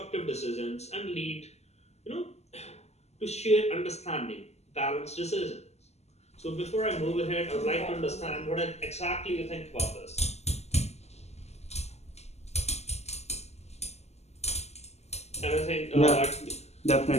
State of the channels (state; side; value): late; right; 0.31 ms